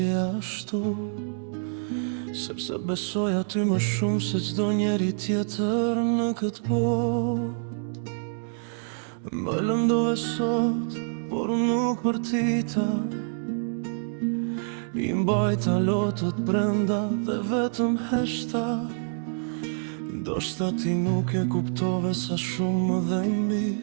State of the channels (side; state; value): left; silent; digital silence